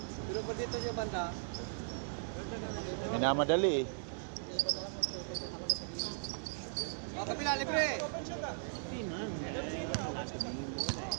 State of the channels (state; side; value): silent; left; 53 dB below the other